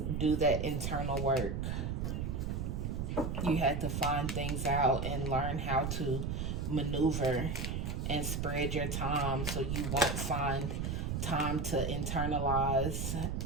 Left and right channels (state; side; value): noise; right; rumble, 2 dB below the sound